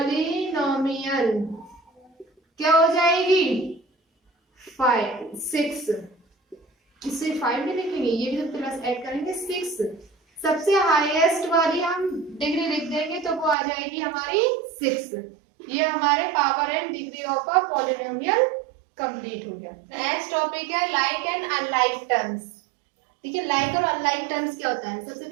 क्या हो जाएगी? 6। इससे 5 भी लिखेंगे, ये भी प्लस ऐड करेंगे 6। सबसे हाईएस्ट वाली हम डिग्री लिख देंगे तो वो आ जाएगी हमारी 6। ये हमारे power and degree of a polynomial complete हो गया। नेक्स्ट टॉपिक है लाइक एंड अनलाइक टर्म्स। ठीक है, लाइक और अनलाइक टर्म्स क्या होता है? सबसे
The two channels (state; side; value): drops out; left; at 13.6 s